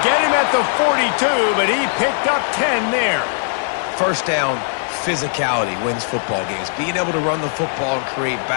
get him at the 42, but he picked up 10 there. 1st down, physicality wins football games. Being able to run the football and create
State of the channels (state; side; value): silent; right; digital silence